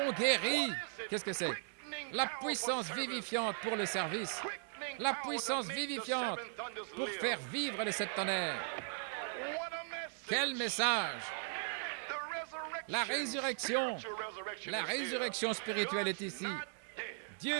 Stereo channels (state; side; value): silent; left; digital silence